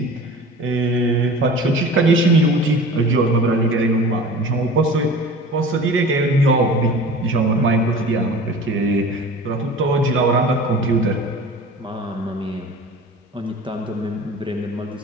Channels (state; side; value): normal; both; correlation 0.39